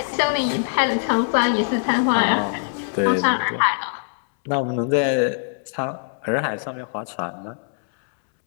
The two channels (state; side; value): silent; right; 64 dB below the other